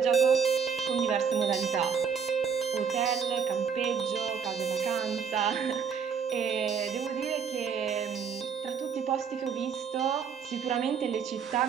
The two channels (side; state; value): left; quieter; 6.6 dB